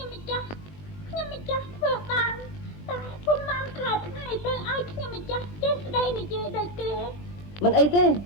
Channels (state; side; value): late; right; 20 ms